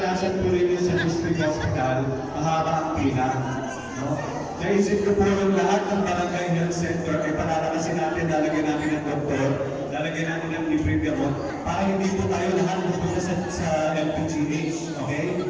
po rin yun sa district hospital, mahaba ang pila, no? Naisip ko po yung lahat ng barangay health center ay palalakasin natin, lalagyan natin ng doktor, lalagyan natin ng libreng gamot, para hindi po tayo lahat magpunta sa LPGH, okay?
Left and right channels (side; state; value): both; identical; correlation 1.00